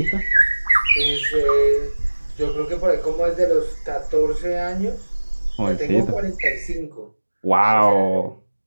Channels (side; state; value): both; inverted; correlation -1.00